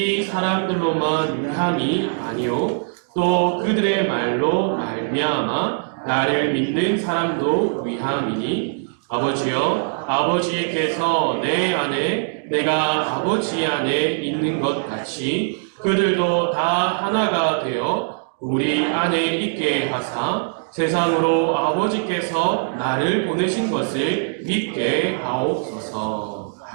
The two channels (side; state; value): left; silent; 64 dB below the other